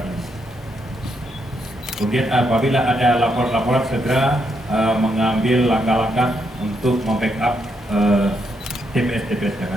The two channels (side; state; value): both; normal; correlation 0.78